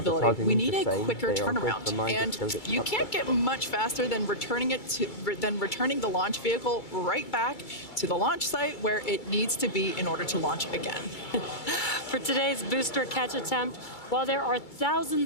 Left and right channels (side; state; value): right; late; 2.3 ms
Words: we need a quicker turnaround. And you can't get much faster than returning the launch vehicle right back to the launch site where it needs to be in order to launch again. For today's booster catch attempt, while there are